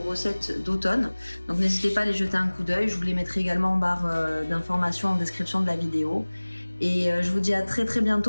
recettes d'automne. Donc n'hésitez pas à les jeter un coup d'œil. Je vous les mettrai également en barre d'informations en description de la vidéo. Et je vous dis à très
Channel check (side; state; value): both; inverted; correlation -1.00